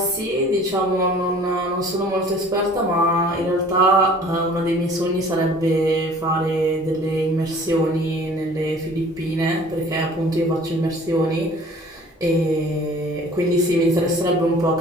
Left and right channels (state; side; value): normal; both; correlation 0.50